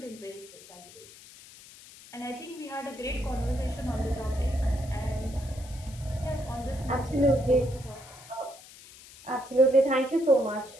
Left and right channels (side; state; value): left; noise; hiss, 19 dB below the sound